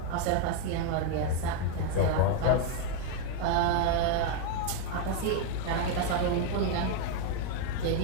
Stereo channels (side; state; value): both; different; correlation 0.01